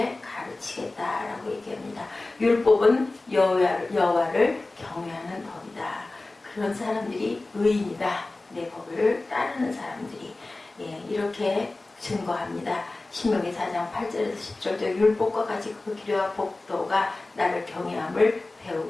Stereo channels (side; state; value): right; quieter; 3.1 dB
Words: 가르치겠다라고 얘기합니다. 율법은 여호와를 경외하는 법이다. 그런 사람들이 의인이다. 내 법을 따르는 사람들이 이렇게 증거합니다. 신명기 4장 8절에서 10절도 율법과 같이 그 기료와 법도가 나를 경외함을